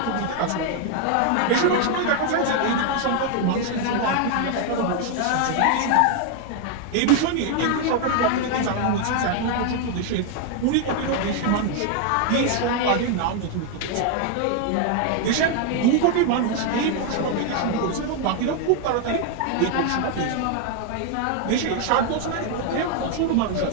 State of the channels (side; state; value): both; different; correlation 0.00